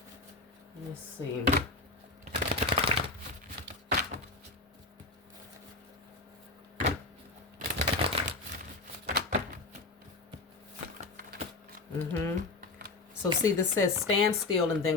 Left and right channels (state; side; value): quieter; right; 3.3 dB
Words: Let's see. So see, this says stand still and